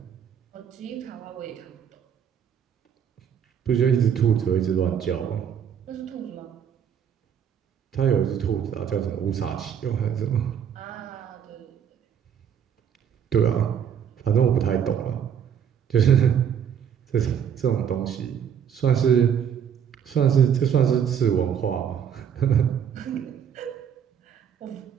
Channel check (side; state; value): left; quieter; 8.4 dB